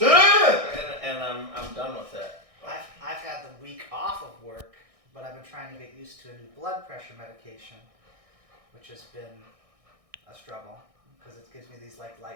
and I'm done with it. I've had the week off of work, but I've been trying to get used to a new blood pressure medication, which has been a struggle because it gives me these like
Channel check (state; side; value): late; left; 1.6 ms